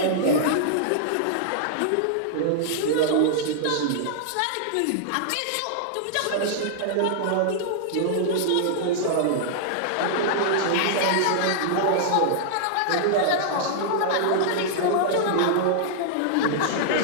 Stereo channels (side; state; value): both; different; correlation -0.01